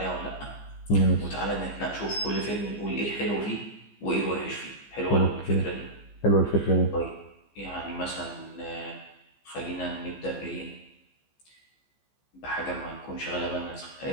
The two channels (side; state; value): right; late; 15 ms